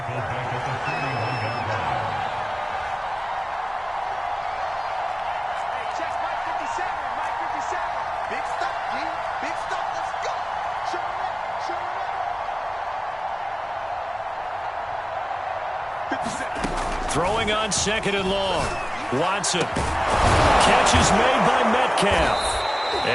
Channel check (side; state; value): both; identical; correlation 1.00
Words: Throwing on 2nd and long. Watson. Catch is made by Metcalf.